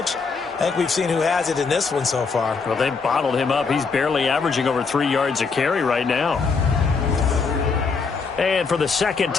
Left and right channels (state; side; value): quieter; right; 4.9 dB